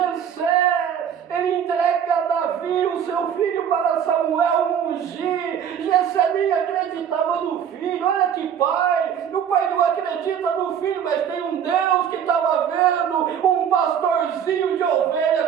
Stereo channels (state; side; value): quieter; left; 8.5 dB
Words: ele entrega a Davi, o seu filho, para Samuel ungir. Jessé nem acreditava no filho. Olha que pai. O pai não acredita no filho, mas tem um Deus que estava vendo um pastorzinho de